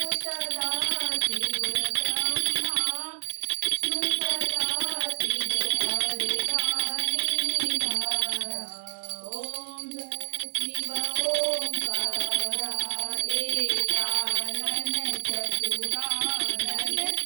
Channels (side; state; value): left; silent; 59 dB below the other